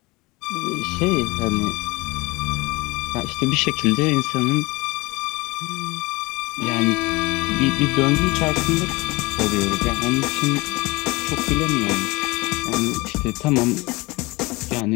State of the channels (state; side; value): quieter; right; 23.5 dB